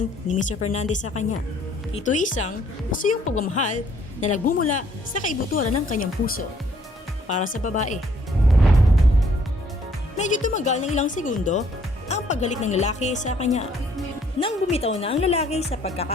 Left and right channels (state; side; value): normal; both; correlation 0.63